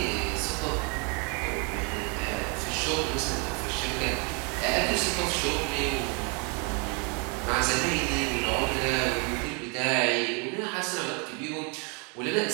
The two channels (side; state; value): left; quieter; 34.4 dB